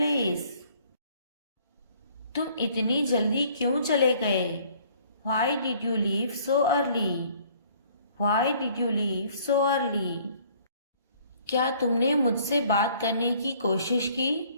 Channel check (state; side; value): inverted; both; correlation -0.58